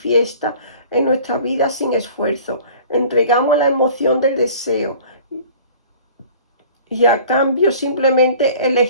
en nuestra vida sin esfuerzo. Entregamos la emoción del deseo y a cambio simplemente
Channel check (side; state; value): both; inverted; correlation -0.47